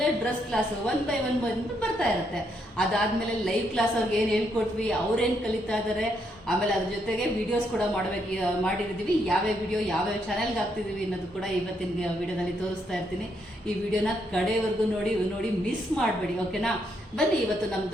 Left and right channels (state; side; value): normal; both; correlation 0.76